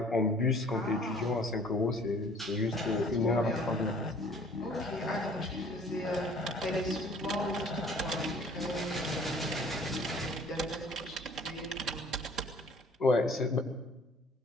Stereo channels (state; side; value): normal; both; correlation 0.53